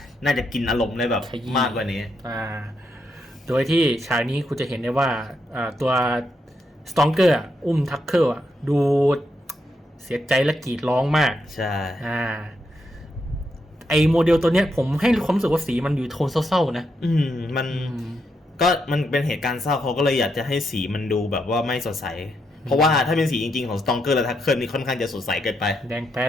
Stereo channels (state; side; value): normal; both; correlation 0.81